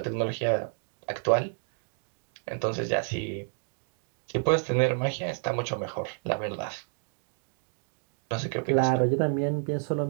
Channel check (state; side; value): silent; left; 58 dB below the other